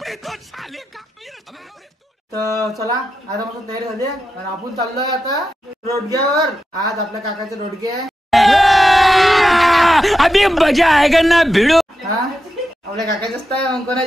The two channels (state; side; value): normal; both; correlation 0.89